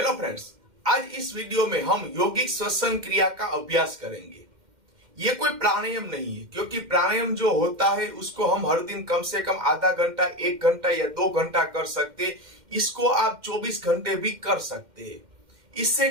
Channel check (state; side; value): late; left; 2.1 ms